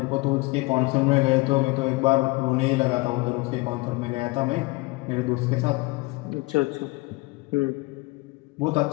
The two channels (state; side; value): quieter; right; 24.0 dB